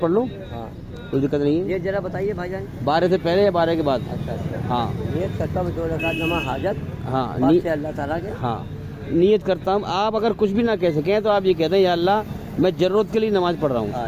پڑھ لو, ہاں کوئی دقت نہیں ہے. یہ ذرا بتائیے بھائی جان, 12 سے پہلے یا 12 کے بعد؟ اچھا ہاں نیت کرتا ہوں 2 رکعت نماز حاجت ہاں پاک سے اللہ تعالیٰ کے. ہاں نیت کرتا ہوں. آپ اگر کچھ بھی نہ کہہ سکیں تو آپ یہ کہتے ہیں یا اللہ میں ضرورت کے لیے نماز پڑھ رہا ہوں.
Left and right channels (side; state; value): both; identical; correlation 1.00